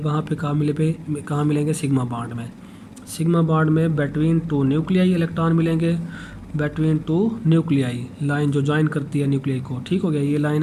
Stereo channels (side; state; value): both; identical; correlation 1.00